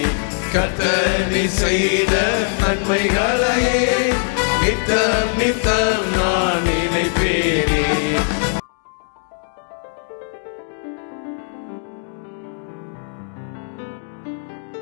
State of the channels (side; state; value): right; silent; digital silence